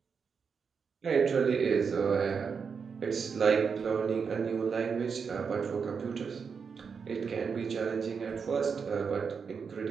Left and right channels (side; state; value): left; quieter; 5.9 dB